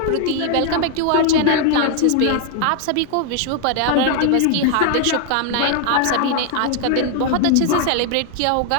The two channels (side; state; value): both; different; correlation 0.00